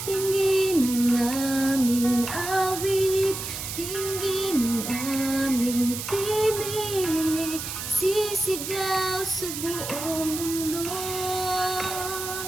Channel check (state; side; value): noise; right; hiss, 6 dB below the sound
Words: Tingin ang aming awit, tingin ang aming tinig, sisigaw sa buong mundo.